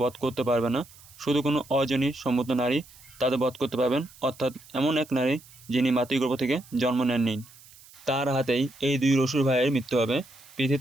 বধ করতে পারবে না, শুধু কোনো অজনী সম্মত নারী তাদের বধ করতে পারবেন, অর্থাৎ এমন এক নারী যিনি মাতৃগর্ভ থেকে জন্ম নেননি। তার হাতেই এই দুই অসুর ভাইয়ের মৃত্যু হবে।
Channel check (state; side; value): noise; right; hiss, 23 dB below the sound